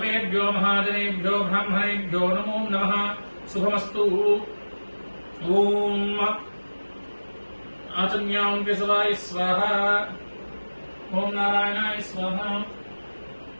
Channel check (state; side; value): inverted; both; correlation -1.00